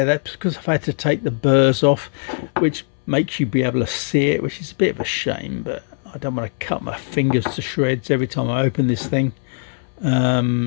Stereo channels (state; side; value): silent; right; 62 dB below the other